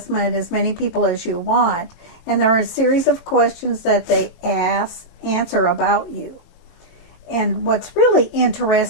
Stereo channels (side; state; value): right; late; 22 ms